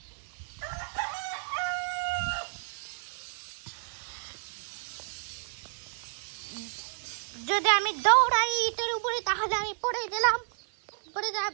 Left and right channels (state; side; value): silent; left; digital silence